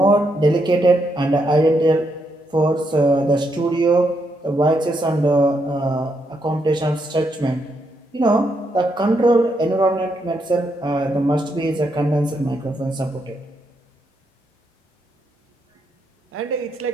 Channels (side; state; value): both; normal; correlation 0.79